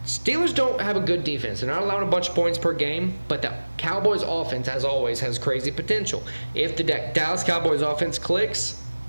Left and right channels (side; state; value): both; inverted; correlation -1.00